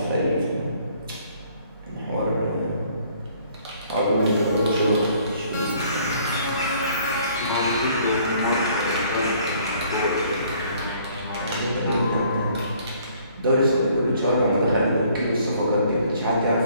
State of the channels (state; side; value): inverted; both; correlation -0.61